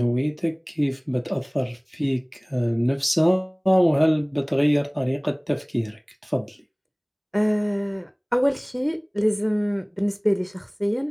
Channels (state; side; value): identical; both; correlation 1.00